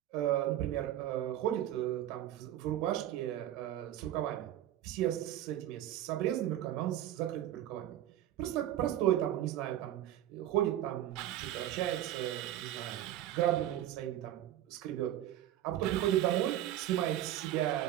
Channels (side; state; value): left; quieter; 12.6 dB